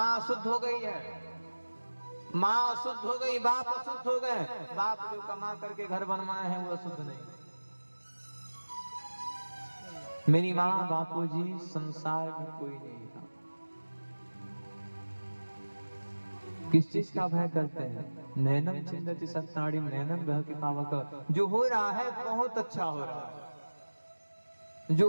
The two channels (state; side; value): inverted; both; correlation -1.00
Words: अशुद्ध हो गई है, माँ अशुद्ध हो गई, बाप अशुद्ध हो गए। बाप जो कमा करके घर बनवाए हैं वो अशुद्ध नहीं। मेरी माँ बापूजी संसार में कोई नहीं था। किस चीज का भय करते हैं? नैनम चिंदति सत्ताड़िम नैनम ग्रह के पावक। जो हो रहा है बहुत अच्छा हो रहा है,